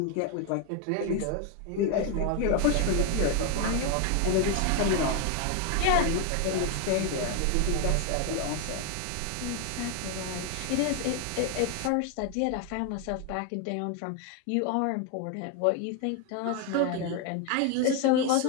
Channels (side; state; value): both; different; correlation 0.01